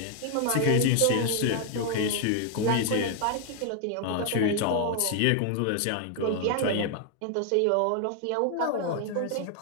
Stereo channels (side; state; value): both; different; correlation 0.00